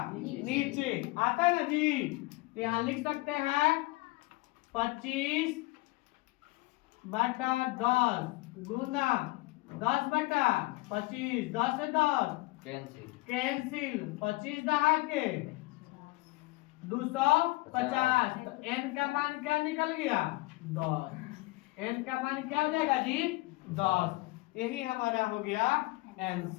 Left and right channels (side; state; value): right; quieter; 22.4 dB